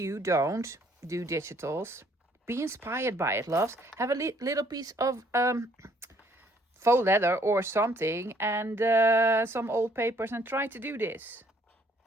don't do digitals, be inspired by it, loves. Have a little piece of faux leather or something and some old papers and try to do this.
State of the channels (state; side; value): normal; both; correlation 0.63